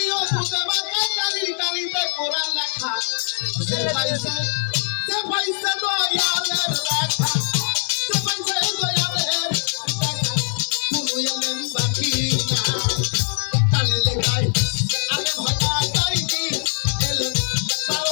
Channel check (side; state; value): right; silent; digital silence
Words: খুদে বাঁকা কালির কালিতে কোরআন লেখা যে পাইছে দয়ালের লেখা যে পাইছে দয়ালের লেখা কোনো আলেম বাকি না কালি লেখায় আলেম হয় না গাইবি এলেম